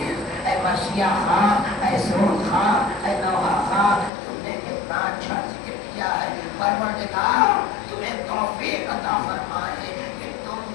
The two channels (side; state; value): right; drops out; at 4.1 s